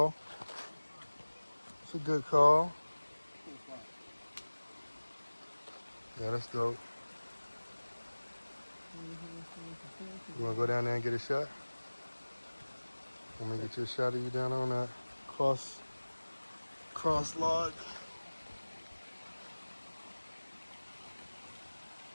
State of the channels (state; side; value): inverted; both; correlation -1.00